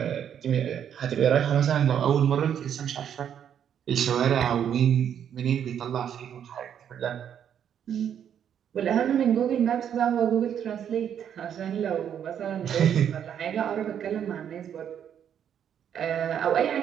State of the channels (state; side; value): quieter; left; 9.0 dB